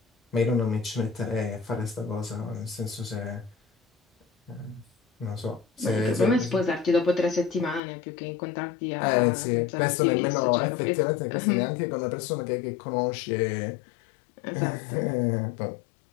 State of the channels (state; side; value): drops out; right; at 7.8 s